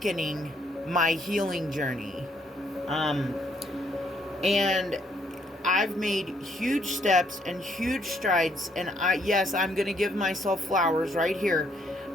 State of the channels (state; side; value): normal; both; correlation 0.69